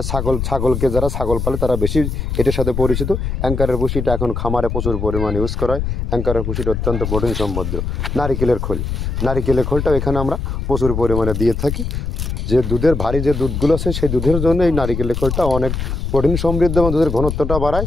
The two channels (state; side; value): noise; left; rumble, 3 dB below the sound